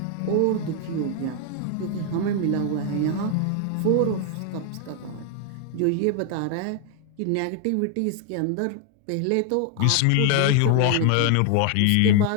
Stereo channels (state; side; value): different; both; correlation 0.00